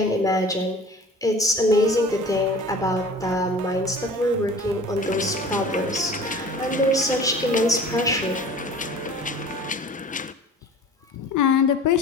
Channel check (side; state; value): both; normal; correlation 0.43